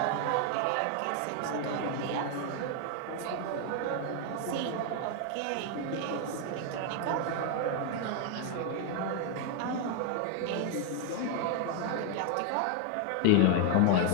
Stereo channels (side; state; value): both; different; correlation 0.00